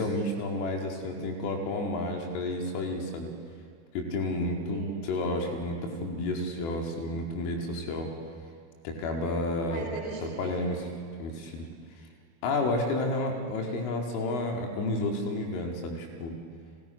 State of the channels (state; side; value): late; right; 24 ms